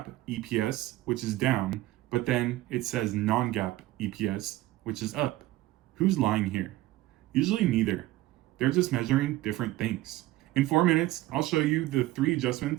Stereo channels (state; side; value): quieter; left; 16.8 dB